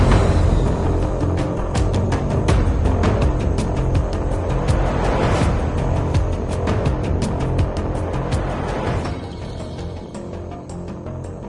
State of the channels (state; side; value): identical; both; correlation 1.00